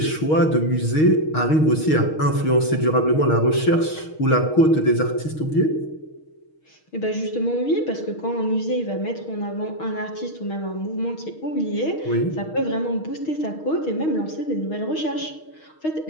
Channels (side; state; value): right; late; 6.4 ms